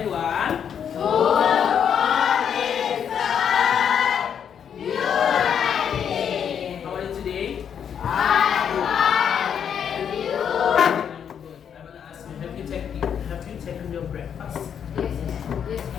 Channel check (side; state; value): right; quieter; 8.1 dB